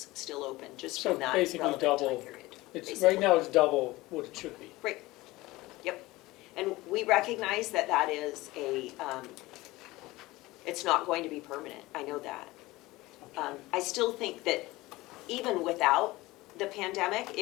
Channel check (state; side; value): quieter; right; 19.6 dB